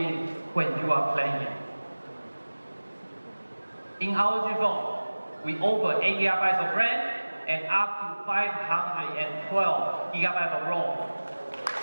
when you are playing. In ROG phone, we offer 8 GB of RAM and up to 512 GB of ROM.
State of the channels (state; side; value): inverted; both; correlation -1.00